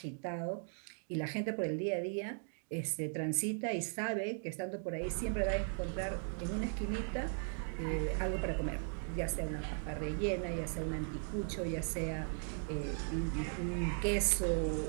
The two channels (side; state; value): left; silent; 52 dB below the other